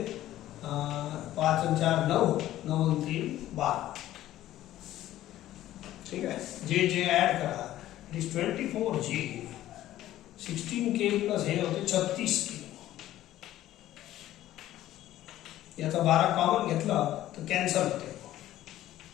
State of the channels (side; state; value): right; quieter; 13.9 dB